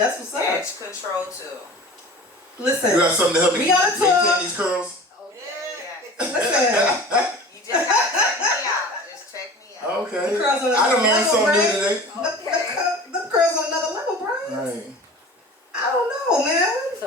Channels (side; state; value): both; normal; correlation 0.39